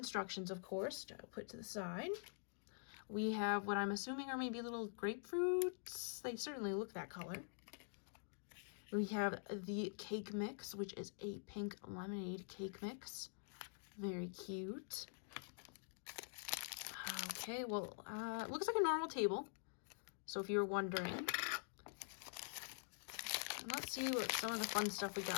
of course, to put to the side. We have what I'm assuming are maybe little grapefruits. They certainly look that color. We have the cake mix, which is a pink lemonade cake mix. Very cute. Okay, well, it looks like a normal table. So if you were wondering. Let's see what some of the fun stuff we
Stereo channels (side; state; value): right; silent; digital silence